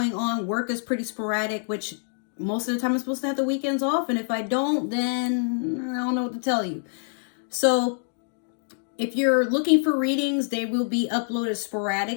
on, work is pretty sporadic, which most of the time I'm supposed to have the weekends off. And if I don't, then I don't know what to tell you. So if you're looking for readings, they will be uploaded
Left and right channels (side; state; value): right; silent; 61 dB below the other